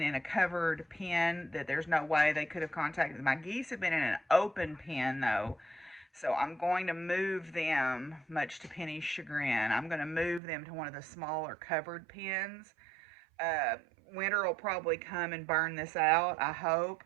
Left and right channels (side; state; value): left; drops out; at 10.4 s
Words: in a covered pen that there's no way they could have contacted. My geese have been in an open pen, though. So I'm going to move them, much to Penny's chagrin. I'm going to move them to one of the smaller covered pens. Winter will probably come and burn this out, I hope.